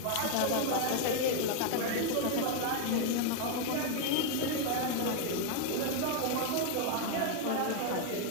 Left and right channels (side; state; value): both; different; correlation 0.01